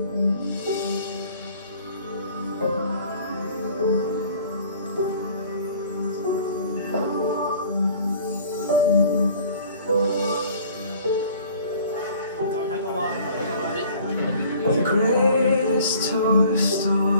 The greatest toy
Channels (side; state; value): both; inverted; correlation -0.51